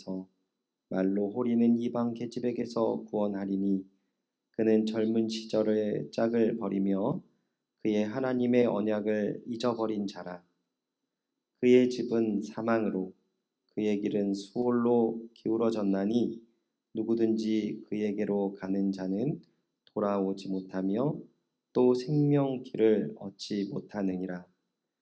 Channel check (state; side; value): identical; both; correlation 1.00